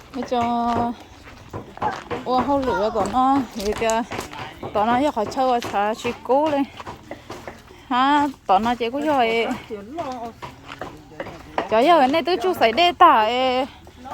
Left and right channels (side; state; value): both; identical; correlation 1.00